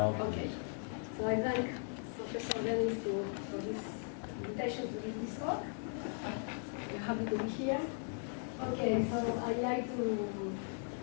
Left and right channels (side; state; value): right; silent; 52 dB below the other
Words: Okay. is. So I thank Professor Dennis for this invitation to give this talk. I'm happy to be here. Okay, so I'd like to